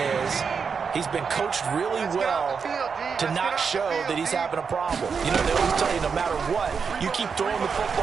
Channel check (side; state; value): left; quieter; 5.8 dB